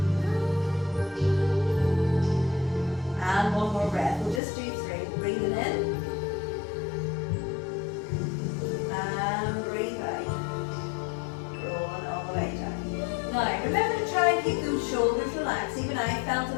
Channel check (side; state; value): right; drops out; at 4.4 s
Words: And one more breath. We'll just do 3. Breathing in. And breathe out. Rolling all the way down. Now, remember to try and keep those shoulders relaxed. Even I felt a